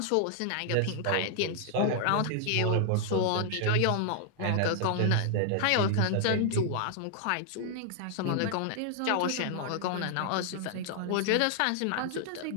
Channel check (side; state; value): both; different; correlation 0.00